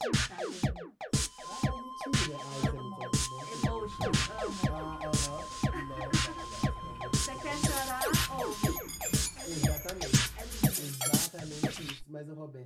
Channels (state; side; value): identical; both; correlation 1.00